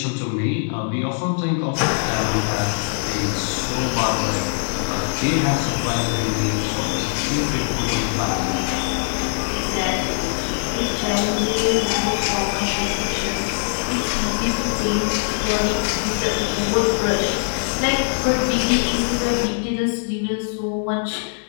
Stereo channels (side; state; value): right; silent; digital silence